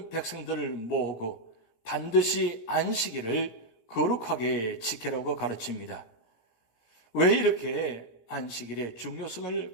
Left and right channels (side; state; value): right; late; 17 ms